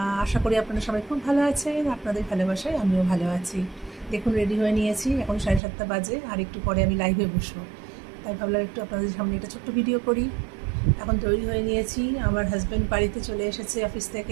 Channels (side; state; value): left; drops out; at 5.6 s